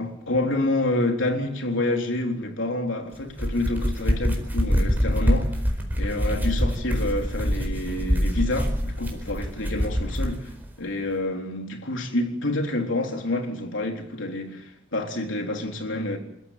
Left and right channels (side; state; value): both; normal; correlation 0.59